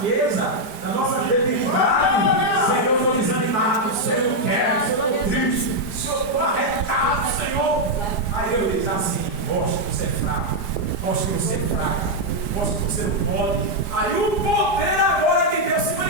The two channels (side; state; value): right; late; 4.9 ms